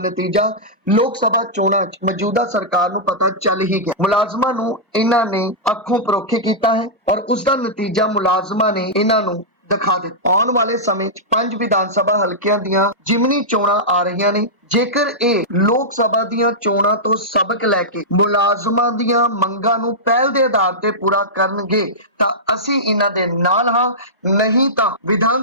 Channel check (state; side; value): normal; both; correlation -0.12